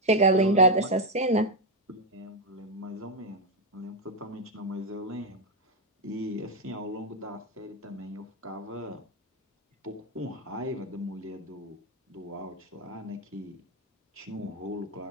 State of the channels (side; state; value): both; normal; correlation 0.05